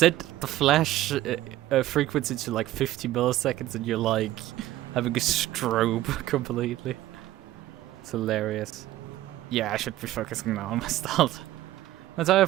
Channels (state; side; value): quieter; left; 14.9 dB